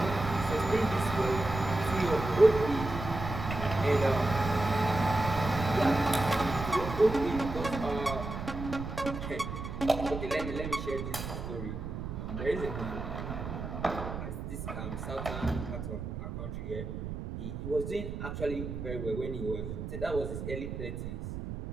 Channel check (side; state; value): right; noise; rumble, 6 dB below the sound